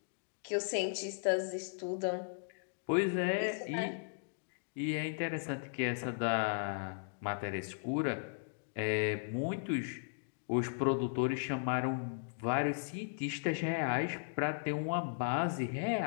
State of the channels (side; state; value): right; silent; digital silence